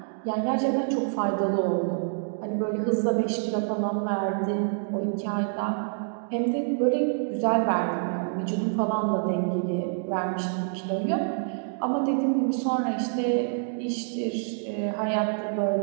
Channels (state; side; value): silent; left; digital silence